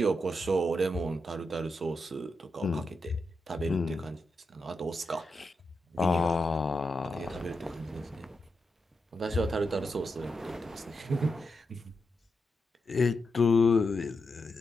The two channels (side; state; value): both; normal; correlation 0.86